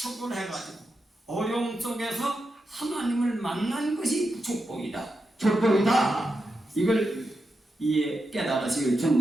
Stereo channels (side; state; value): both; normal; correlation 0.88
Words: 해가지고 어려움 속에서 하나님을 만난 것이 축복이다. 축복이다. 이걸 깨달으시길